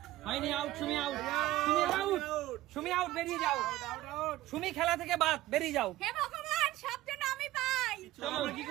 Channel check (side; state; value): left; quieter; 16.2 dB